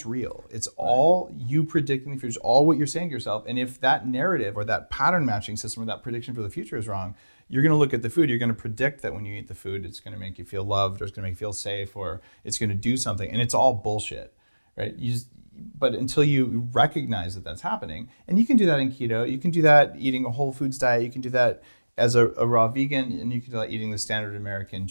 real. It's all you predicting the future, all what you're saying to yourself. And if that narrative or that pattern matching system or that prediction for the future is wrong, you're going to look at the food. You're going to predict that when you eat the food, it's going to make you feel loved, or it's going to make you feel safe, or it's going to do something. And it's all bullshit, right? But until you recognize that that's happening, and you can do that in keto, you can do that eating a whole foods diet, you can do that as a raw vegan, and you can do that eating the standard American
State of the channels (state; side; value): inverted; both; correlation -1.00